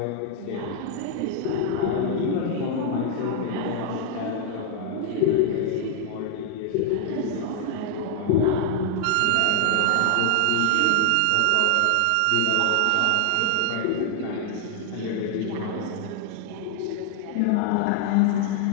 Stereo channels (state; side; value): different; both; correlation 0.00